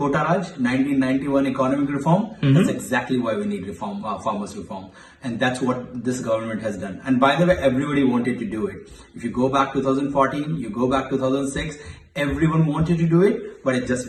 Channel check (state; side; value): identical; both; correlation 1.00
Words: Raj, 1991 economic reform? That's exactly why we need reform, farmers reform. And that's what this government has done. And by the way, everybody wanted to do it. If you go back 2014, you go back 2006, everyone wanted to do it, but it's just